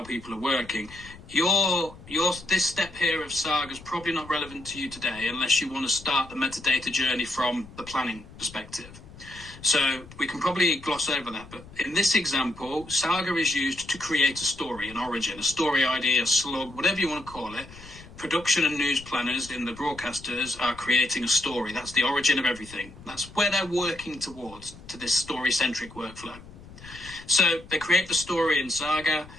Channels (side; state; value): left; noise; rumble, 18 dB below the sound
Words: people are working. This step here of Saga is probably not relevant to you today unless you want to start the metadata journey from the planning perspective. So we can probably gloss over that. But in this example, Saga is used to create a story, an origin, a story ID, a slug, whatever you want to call it. Production and news planners in the broadcasters are creating a story. That's the origin of everything. That's where they're working towards, to this story-centric workflow. So they create the story in Saga,